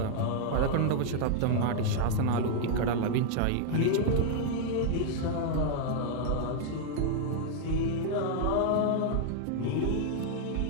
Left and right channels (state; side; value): different; both; correlation -0.01